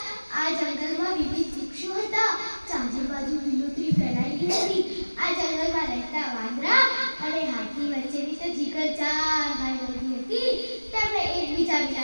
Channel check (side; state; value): both; inverted; correlation -1.00